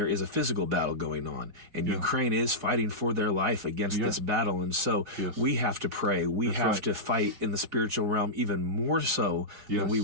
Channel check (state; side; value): late; left; 4.8 ms